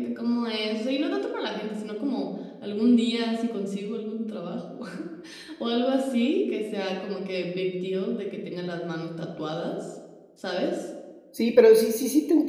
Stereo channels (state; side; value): identical; both; correlation 1.00